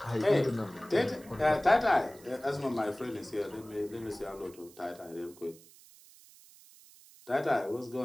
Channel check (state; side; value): noise; right; hiss, 23 dB below the sound